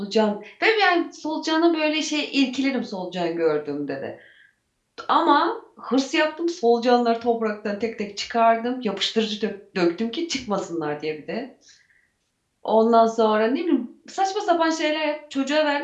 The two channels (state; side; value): identical; both; correlation 1.00